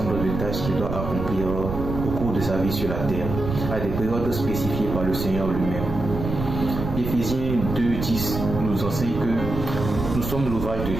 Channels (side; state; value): right; noise; rumble, 5 dB below the sound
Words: de tâches qu'il doit accomplir au cours de sa vie sur la terre, à des périodes spécifiées par le Seigneur lui-même. Éphésiens 2:10 nous enseigne que nous sommes l'ouvrage de